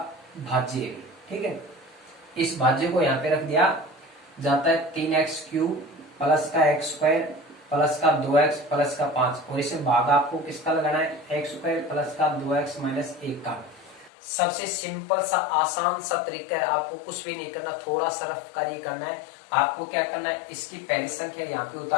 भाज्य है। ठीक है, इस भाज्य को यहाँ पे रख दिया जाता है 3x³ प्लस का x² प्लस का 2x प्लस का 5 और इसे भाग आपको किसका लगाना है, x² प्लस का 2x माइनस 1 का। सबसे सिंपल सा आसान सा तरीका है, आपको कुछ भी नहीं करना, थोड़ा सा रफ कार्य करना है। आपको क्या करना है, इसकी पहली संख्या यहाँ पे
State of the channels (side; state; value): right; drops out; at 14.1 s